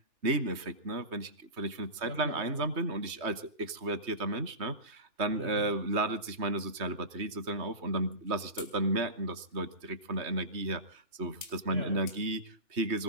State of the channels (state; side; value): late; left; 3.2 ms